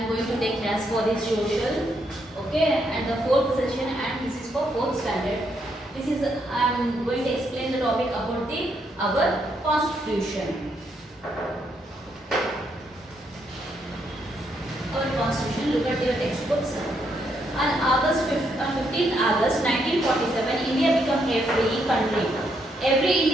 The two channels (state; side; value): normal; both; correlation 0.76